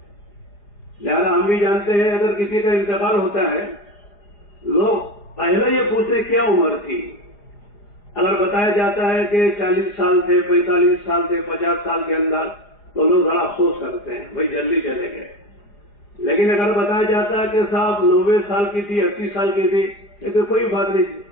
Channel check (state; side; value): late; right; 4.9 ms